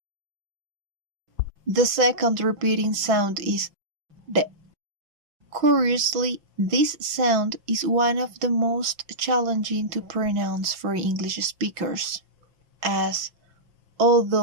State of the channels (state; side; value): late; left; 5.9 ms